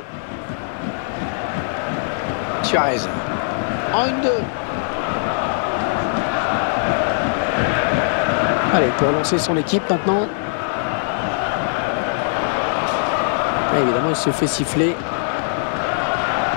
Suarez. En 1-2. Allez, pour lancer son équipe maintenant. Et évidemment, il se fait siffler.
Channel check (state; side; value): silent; right; digital silence